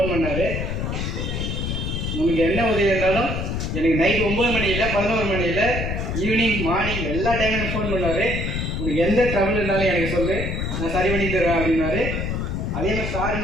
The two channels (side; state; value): left; noise; rumble, 2 dB below the sound